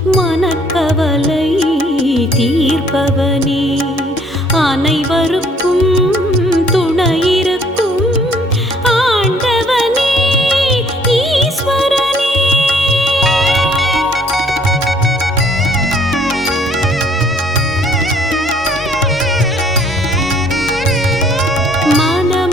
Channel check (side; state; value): both; normal; correlation 0.60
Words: மனக்கவலை தீர்ப்பவனே அனைவருக்கும் துணையிருக்கும் ஆண்டவனே ஈஸ்வரனே